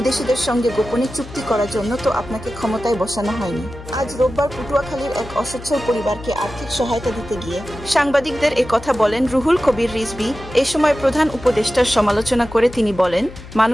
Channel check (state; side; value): noise; left; hum, 15 dB below the sound